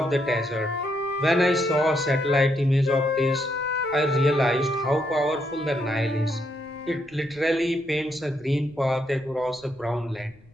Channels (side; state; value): left; noise; rumble, 28 dB below the sound